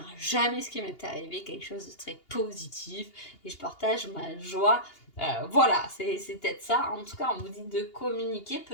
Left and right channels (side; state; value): right; late; 2.8 ms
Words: jamais ce qui m'est arrivé, quelque chose de très positif, et je partage ma joie. Voilà, c'est peut-être ça. En tout cas, on vous dit de communiquer